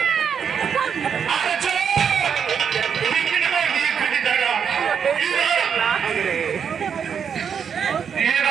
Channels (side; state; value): left; quieter; 7.2 dB